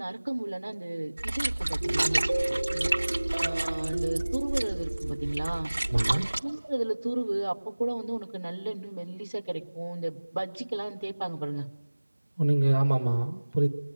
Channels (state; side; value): inverted; both; correlation -1.00